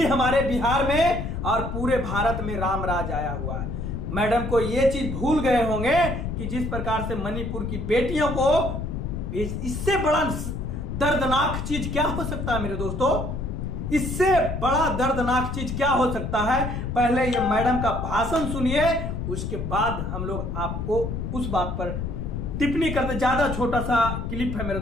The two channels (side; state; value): left; noise; rumble, 4 dB below the sound